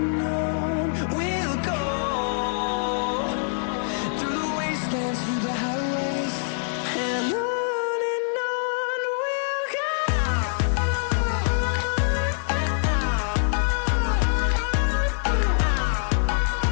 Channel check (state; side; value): silent; right; digital silence